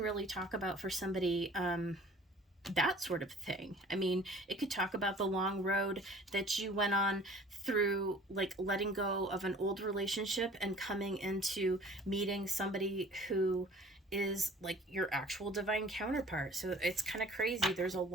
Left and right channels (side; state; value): both; normal; correlation 0.48